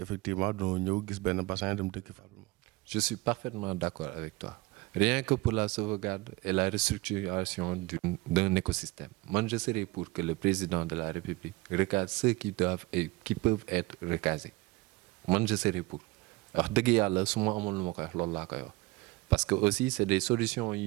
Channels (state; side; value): quieter; left; 21.5 dB